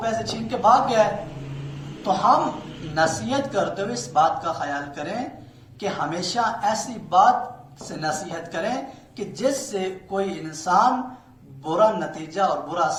پیسے چھین کے بھاگ گیا ہے۔ تو ہم نصیحت کرتے ہوئے اس بات کا خیال کریں کہ ہمیشہ ایسی بات سے نصیحت کریں کہ جس سے کوئی انسان برا نتیجہ اور برا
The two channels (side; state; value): both; identical; correlation 1.00